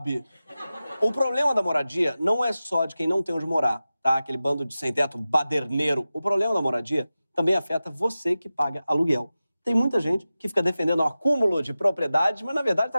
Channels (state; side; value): inverted; both; correlation -0.95